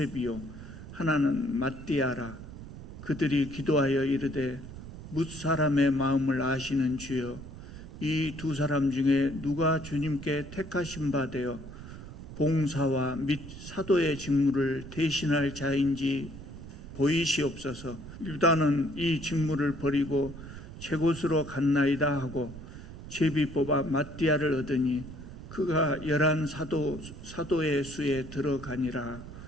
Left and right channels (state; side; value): noise; right; rumble, 13 dB below the sound